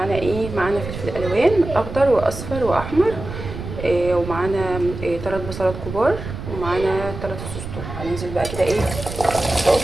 ايه. معانا فلفل الوان اخضر واصفر واحمر، ومعانا 3 بصلات كبار، ومعانا 3 فصوص ثوم. هننزل بقى كده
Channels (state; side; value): noise; right; rumble, 9 dB below the sound